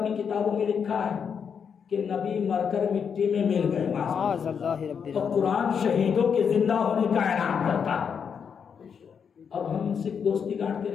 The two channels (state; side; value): quieter; right; 6.9 dB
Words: کتابوں میں لکھا ہے کہ نبی مر کر مٹی میں مل گئے تو قرآن شہیدوں کے زندہ ہونے کا اعلان کرتا ہے. اب ہم ان سے دوستی کاٹتے